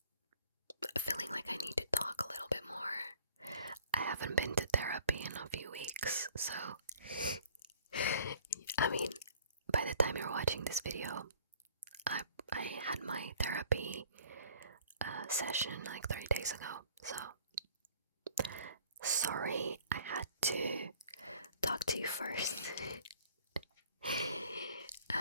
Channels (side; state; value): both; inverted; correlation -0.54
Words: feeling like I need to talk a little bit more. I haven't been to therapy in a few weeks, so I mean, by the time you're watching this video, I had my therapy session like 3 days ago, so sorry I had to talk to you first.